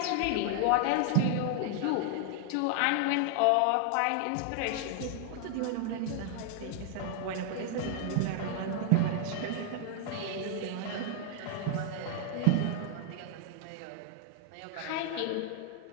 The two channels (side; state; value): both; different; correlation 0.00